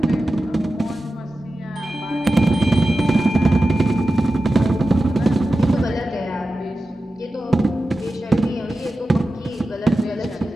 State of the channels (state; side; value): normal; both; correlation 0.93